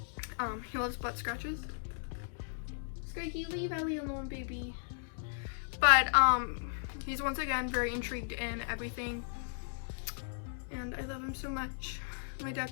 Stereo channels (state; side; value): silent; right; digital silence